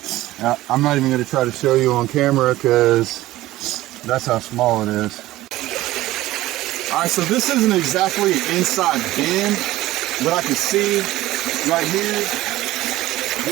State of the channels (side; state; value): left; quieter; 16.5 dB